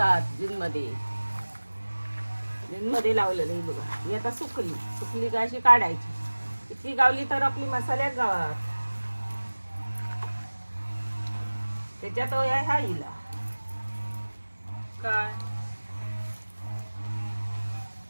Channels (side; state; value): both; inverted; correlation -1.00